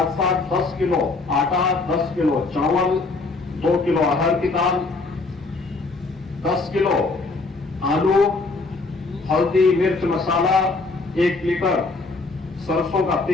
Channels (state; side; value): quieter; right; 3.6 dB